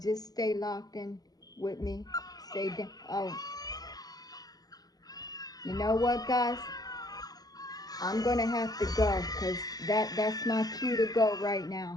stay locked in with me. Stay down. Oh, you know what, guys? I'm gonna have to go because that's my cue to go right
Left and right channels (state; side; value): late; right; 0.19 ms